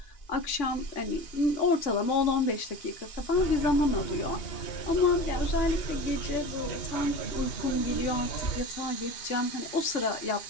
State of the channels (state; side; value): late; right; 2.8 ms